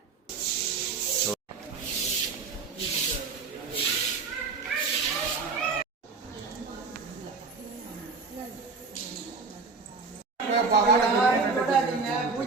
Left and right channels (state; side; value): quieter; left; 4.5 dB